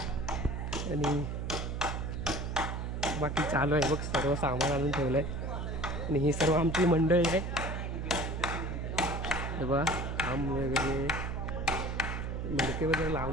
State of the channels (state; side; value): noise; right; hum, 3 dB below the sound